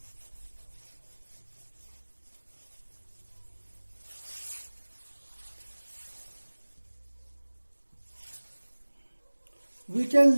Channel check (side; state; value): both; inverted; correlation -1.00